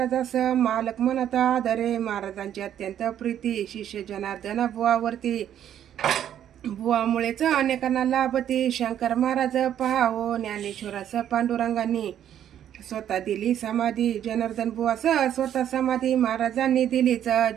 मालक म्हणत आदरे. महाराजांची अत्यंत प्रीती. शिष्य जनार्दन बुवावरती. बुवामुळेच अनेकांना लाभती. शंकर महाराज पहावो. ज्ञानेश्वरास पांडुरंगांनी स्वतः दिली समाधी. जनार्दन बुवास स्वतः समाधी महाराजांनी दिलीच.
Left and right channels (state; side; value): quieter; left; 10.3 dB